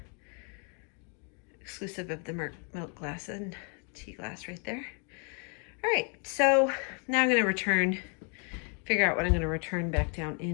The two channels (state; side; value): quieter; right; 38.5 dB